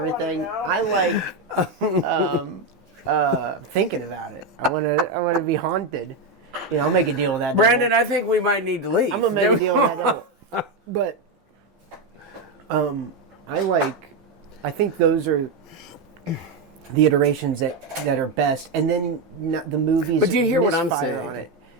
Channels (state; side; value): quieter; left; 3.2 dB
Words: I like thinking about it. I want to be haunted. I'll make a deal with that. Brandon, devil. I think we might need to leave. I'm gonna make a deal with that. Devil. But I think those are the iterations that are best, and then the movies. But do you hear what I'm misfire saying? On it.